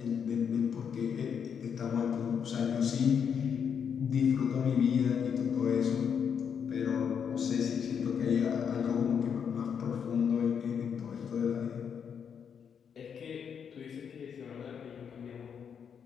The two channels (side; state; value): right; quieter; 7.4 dB